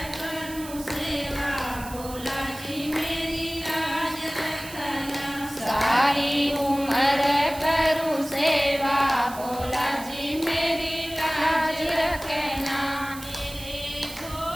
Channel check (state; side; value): noise; right; hiss, 14 dB below the sound